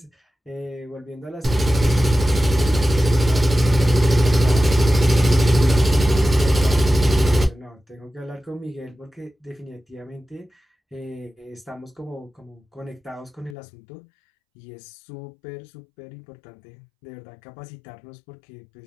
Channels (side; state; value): right; drops out; at 13.6 s